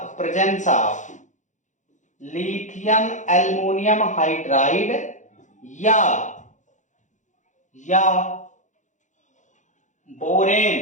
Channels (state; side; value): late; right; 0.36 ms